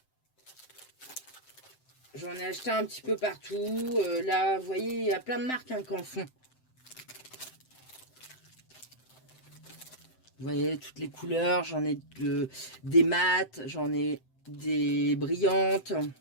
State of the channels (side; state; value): right; late; 7.8 ms